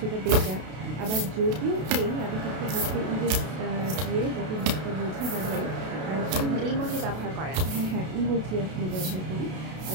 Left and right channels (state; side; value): late; left; 32 ms